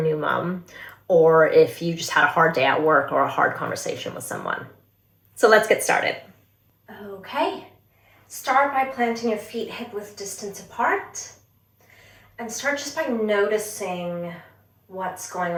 new mom, or if you just had a hard day at work or a hard conversation with someone. So let's get started. Okay, start by planting your feet hip-width distance apart, and start just by noticing what's going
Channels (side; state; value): both; identical; correlation 1.00